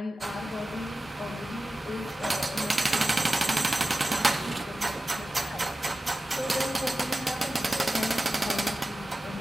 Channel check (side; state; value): both; normal; correlation 0.95